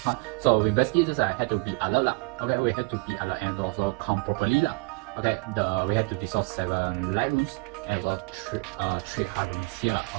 So we basically just had to be alert lah. Okay, we had to be alert and also count properly lah. Okay, we had to dissolve 7 light rooms and also 3 hard rooms here.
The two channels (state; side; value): quieter; left; 29.4 dB